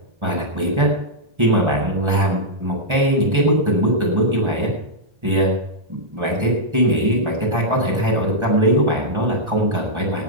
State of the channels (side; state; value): left; late; 1.4 ms